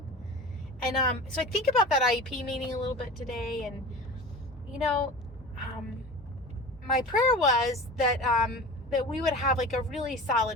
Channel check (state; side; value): normal; both; correlation 0.34